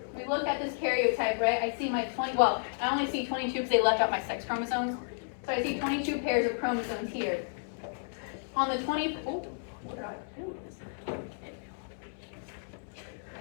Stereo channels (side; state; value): right; silent; digital silence